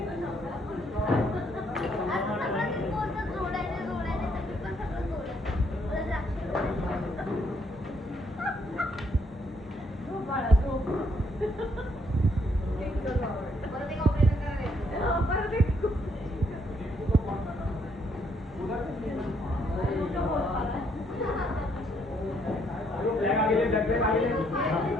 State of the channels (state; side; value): normal; both; correlation 0.71